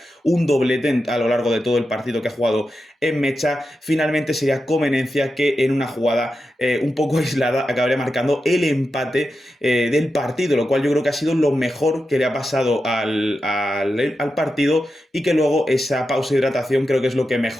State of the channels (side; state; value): both; normal; correlation 0.89